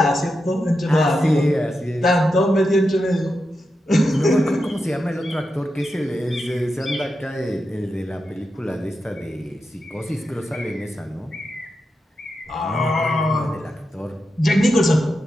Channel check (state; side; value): normal; both; correlation 0.88